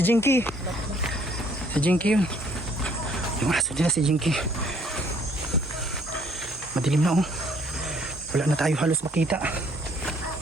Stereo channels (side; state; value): both; normal; correlation 0.62